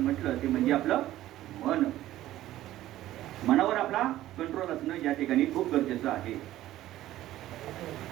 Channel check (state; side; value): quieter; left; 14.4 dB